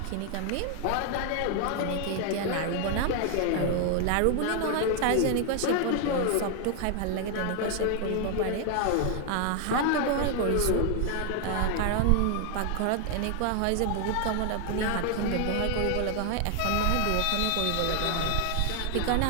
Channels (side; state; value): both; different; correlation 0.00